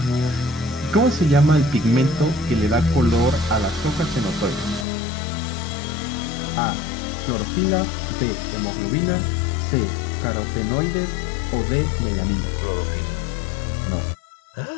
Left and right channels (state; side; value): drops out; right; at 4.9 s